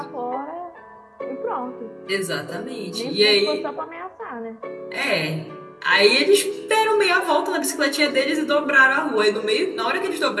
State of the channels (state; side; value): identical; both; correlation 1.00